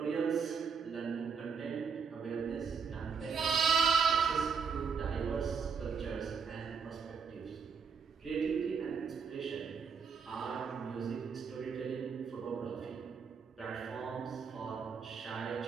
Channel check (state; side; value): quieter; left; 5.9 dB